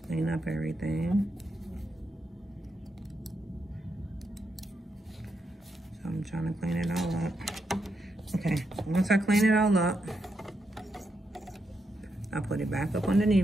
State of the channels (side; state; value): both; normal; correlation 0.83